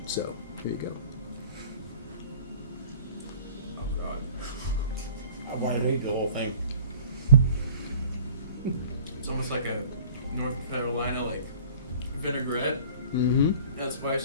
So here you go. Oh God. I want to eat the whole thing. It's almost like a North Carolina vinaigrette. Mm-hmm. Not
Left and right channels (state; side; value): inverted; both; correlation -0.49